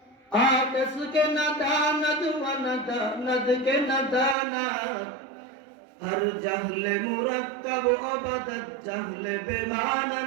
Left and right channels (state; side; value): drops out; left; at 4.4 s